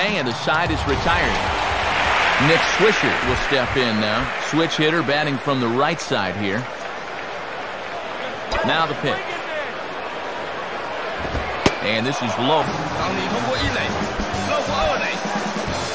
and the side is retired. Nick Swisher will step in now. Switch hitter batting from the right side here. Now the pitch. And this is low.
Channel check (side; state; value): both; identical; correlation 1.00